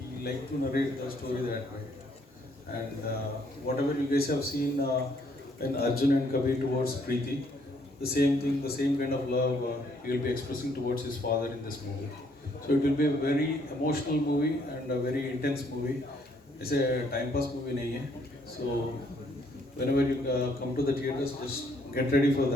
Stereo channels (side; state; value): both; normal; correlation 0.68